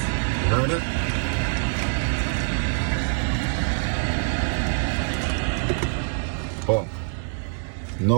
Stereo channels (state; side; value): silent; left; 60 dB below the other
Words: You heard it? Boom.